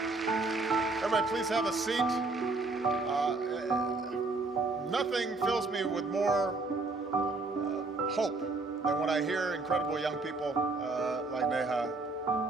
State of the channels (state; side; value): quieter; left; 3.5 dB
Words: Everybody, please have a seat. Nothing fills me with more hope than when I hear incredible young people like Neha